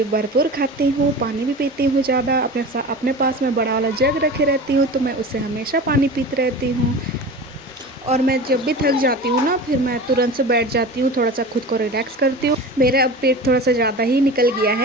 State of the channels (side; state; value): both; normal; correlation 0.33